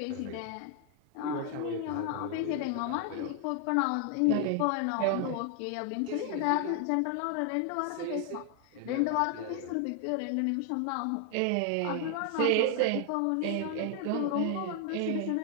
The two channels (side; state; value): both; different; correlation 0.00